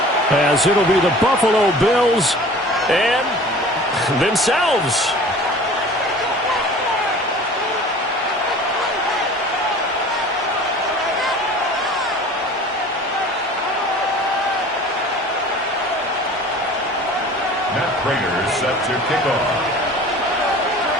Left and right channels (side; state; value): both; normal; correlation 0.44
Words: as it'll be the Buffalo Bills and themselves. Matt Prater set to kick off.